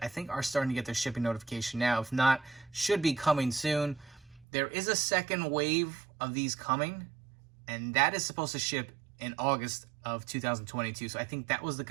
I think, are starting to get their shipping notification now. If not, should be coming soon. There is a second wave of these coming, and that is supposed to ship in August of 2022. So I think that was the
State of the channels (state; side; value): drops out; left; at 4.5 s